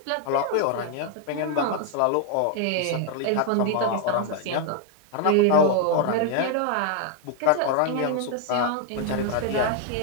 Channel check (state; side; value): different; both; correlation 0.00